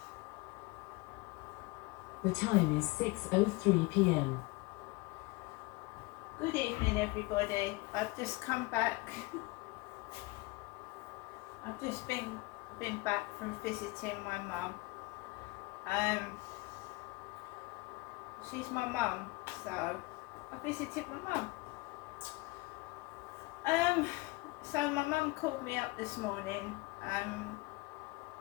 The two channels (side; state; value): right; quieter; 23.3 dB